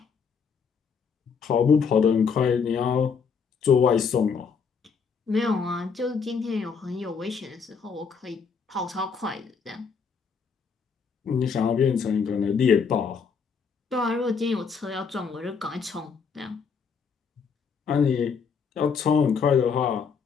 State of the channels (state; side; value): quieter; right; 5.9 dB